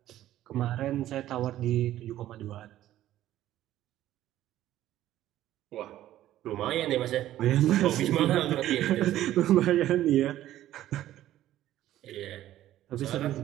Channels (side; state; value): left; quieter; 13.4 dB